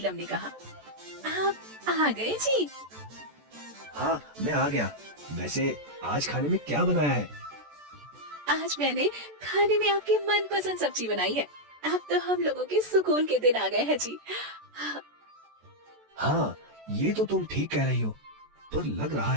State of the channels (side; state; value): left; late; 14 ms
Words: ने कहा, आप आ गए जी? हाँ मैं आ गया। वैसे आज खाने में क्या बनाया है? आज मैंने खाने में आपकी मनपसंद सब्जी बनाई है। अब तो हम लोगों के सुकून के दिन आ गए हैं जी। हाँ ये तो तुम ठीक कह रही हो, पर लग रहा